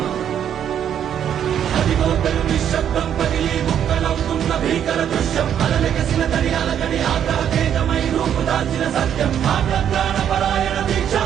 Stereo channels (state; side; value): quieter; left; 9.4 dB